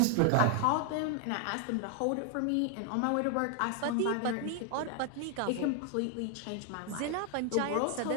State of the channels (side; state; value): both; different; correlation 0.00